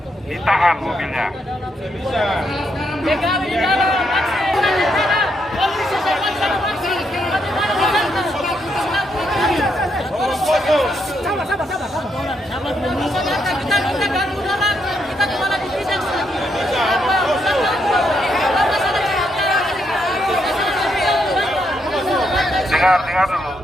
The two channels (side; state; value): both; normal; correlation 0.78